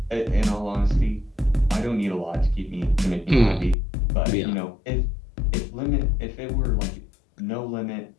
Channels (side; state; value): right; drops out; at 3.8 s